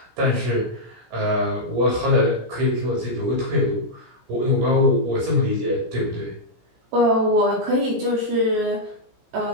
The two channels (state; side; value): late; left; 17 ms